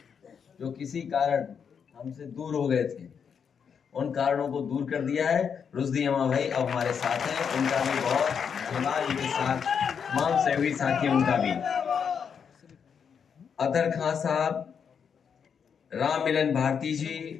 जो किसी कारण हमसे दूर हो गए थे, उन कारणों को दूर कर दिया है। रुश्दी अम्मा भाई अब हमारे साथ हैं, उनका भी बहुत धन्यवाद। उनके साथ तमाम सहयोगी साथी, उनका भी। अतर खां साहब, राम मिलन भारती जी,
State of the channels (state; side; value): quieter; right; 6.9 dB